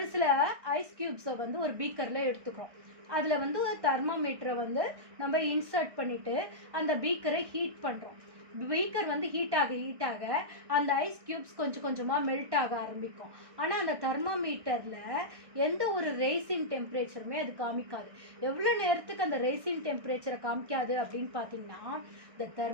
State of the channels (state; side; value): late; left; 1.6 ms